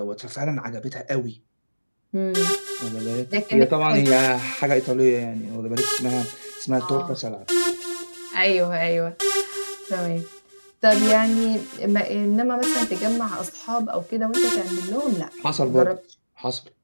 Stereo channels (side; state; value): both; inverted; correlation -1.00